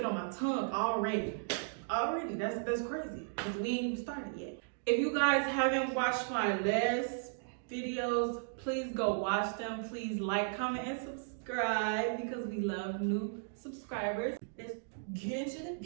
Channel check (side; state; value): left; silent; digital silence